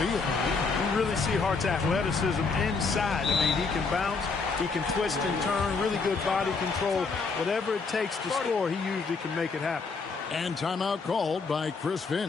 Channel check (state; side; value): quieter; right; 4.5 dB